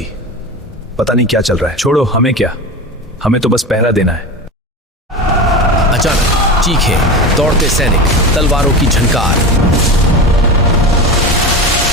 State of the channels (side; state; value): both; normal; correlation 0.26